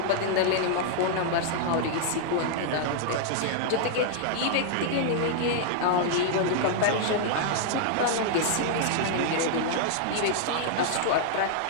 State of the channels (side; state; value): both; different; correlation -0.01